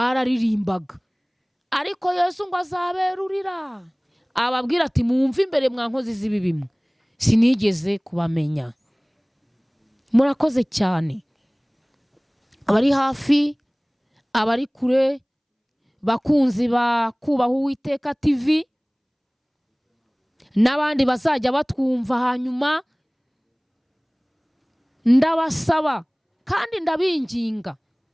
ariko Yesu ngo azaberurira ababwira ati mwumve imbere mwa nkozi z'ibi bimwe, sinigeze kubamenya. Murakoze cyane, abari hafi, abari kure, bakunzi ba Kubaha Uwiteka TV, n'abandi bazajya batwumva hanyuma, ndabasaba kandi ndabinginga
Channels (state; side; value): identical; both; correlation 1.00